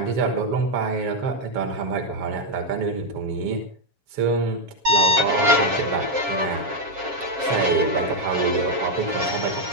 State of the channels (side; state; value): left; late; 7.3 ms